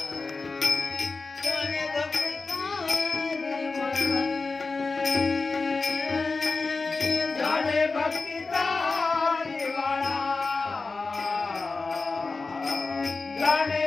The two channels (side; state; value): right; quieter; 3.9 dB